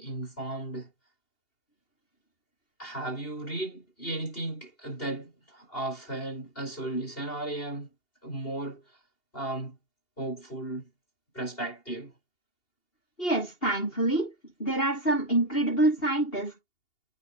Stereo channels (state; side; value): late; right; 2.8 ms